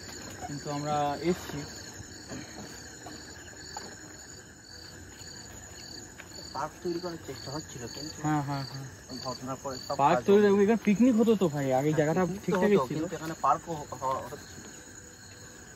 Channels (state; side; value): identical; both; correlation 1.00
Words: কিন্তু আমরা এসছি। পার্ক তৈরি করার চেষ্টা হচ্ছিল, কিন্তু হ্যাঁ হ্যাঁ হ্যাঁ, ঘটনার পরে সব পার্ক তৈরি, এখানে পিকনিক হতো তো ভাই, আগে জায়গাটা ঠিকঠাকই ছিল, কিন্তু এখানে পার্কও হচ্ছিল।